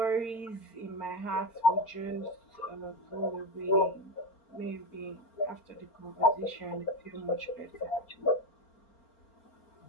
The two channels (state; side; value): late; right; 4.4 ms